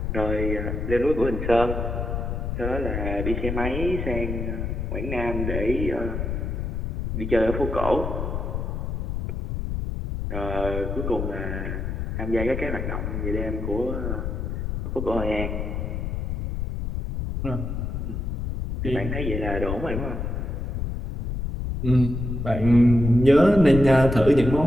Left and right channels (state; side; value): noise; left; rumble, 3 dB below the sound